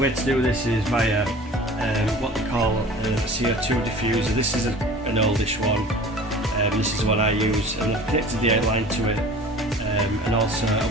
to do this is via what they call a CO2 diffuser. This is an oldish one. This is what I use, and I've connected the airline to it, and also a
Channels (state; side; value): normal; both; correlation 0.42